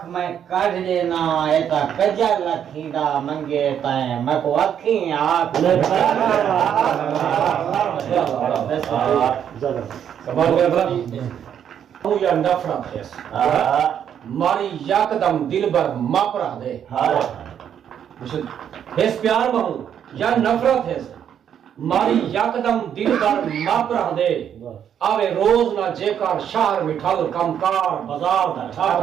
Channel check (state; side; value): quieter; left; 9.0 dB